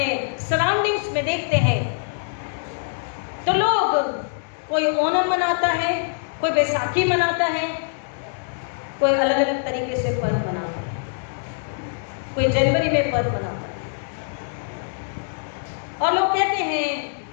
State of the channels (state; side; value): silent; right; digital silence